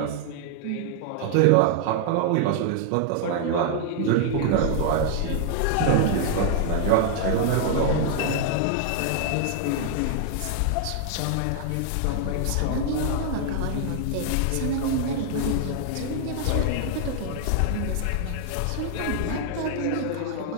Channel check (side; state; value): both; different; correlation 0.00